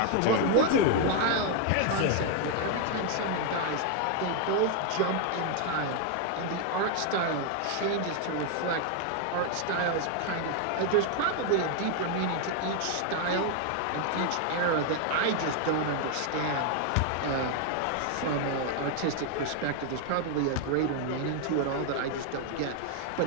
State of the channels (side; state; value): both; different; correlation 0.00